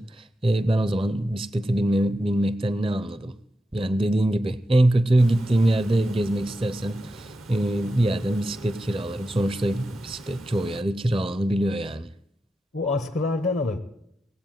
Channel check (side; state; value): both; normal; correlation 0.89